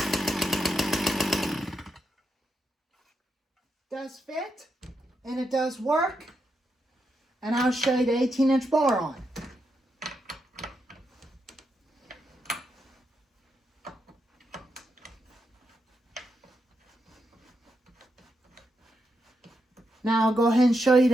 Does fit, and it does work, and I'll show you the 18-inch bar on. Now I'll go ahead and show you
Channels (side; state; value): both; normal; correlation 0.83